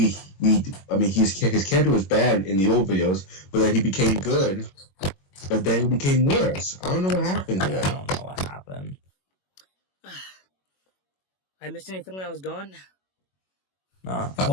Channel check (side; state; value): right; late; 21 ms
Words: his character was bad in the old videos, but then he became good, but then he became worse. I don't know what happened I there. don't know what happened. I missed anything when I was gone?